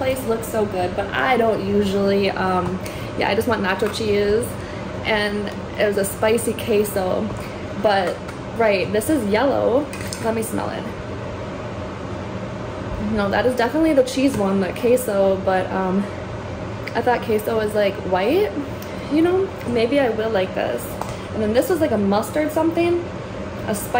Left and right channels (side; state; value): both; identical; correlation 1.00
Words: looks so good, but I don't usually, yeah, I just want nacho cheese, and it was a spicy queso, but right, this is yellow. Let me smell it. No, that is definitely the cheese one, the queso, but I thought queso was like white, you know, maybe I will like this. And then this was like a mustard something, a